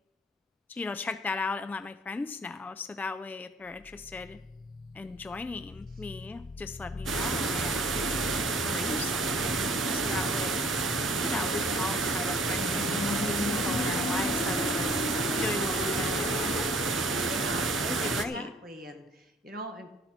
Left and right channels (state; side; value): normal; both; correlation 0.55